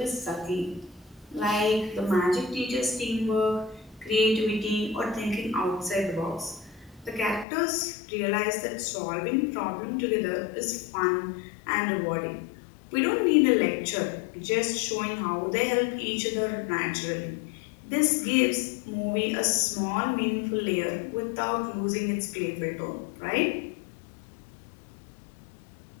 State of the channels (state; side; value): drops out; right; at 7.5 s